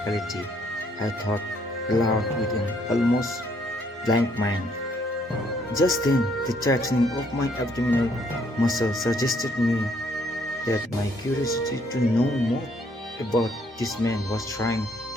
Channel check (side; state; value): both; normal; correlation 0.67